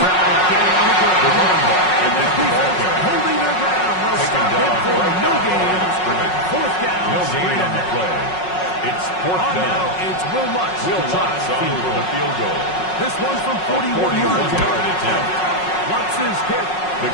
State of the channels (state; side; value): late; right; 5.5 ms